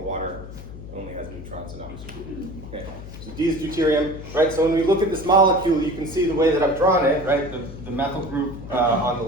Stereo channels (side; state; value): left; noise; hum, 13 dB below the sound